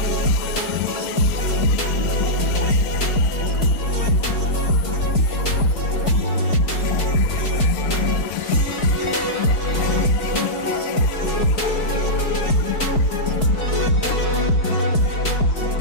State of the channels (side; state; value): right; late; 4.6 ms